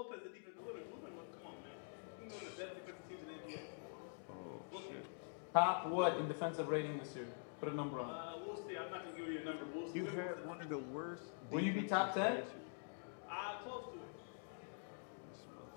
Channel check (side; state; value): right; silent; digital silence